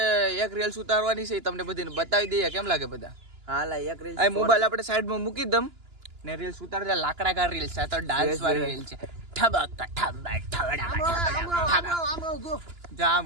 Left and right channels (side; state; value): left; late; 2.9 ms